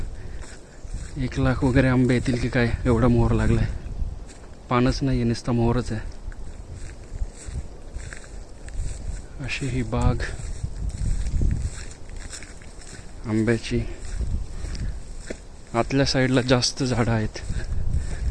1,00,000 वगैरे आंबे येतील की काय, एवढा मोहर लागलाय. पानच नाही आहे, नुसता मोहरच आहे. अशी ही बाग आंब्याची. आतल्या साईडला जास्त झाडं आहेत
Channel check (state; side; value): identical; both; correlation 1.00